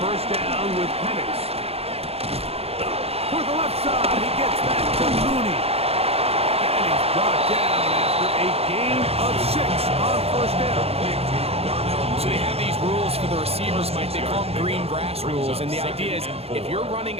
down with Penix. For the left side, he gets back to Mooney. And he's brought down after a gain of 6 on first down. So they have these rules for the receivers, Mike. They call them green grass rules. And the idea is if you're running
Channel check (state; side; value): late; left; 0.29 ms